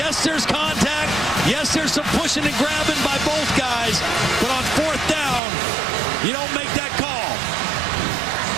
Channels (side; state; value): left; drops out; at 5.4 s